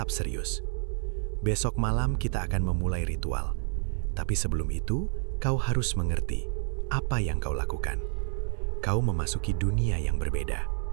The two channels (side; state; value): left; silent; 58 dB below the other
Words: serius. "Besok malam kita akan memulai ritual. Tapi sebelum itu, kau harus mengerti apa yang kau lakukan. Kau memasuki dunia yang berbeda.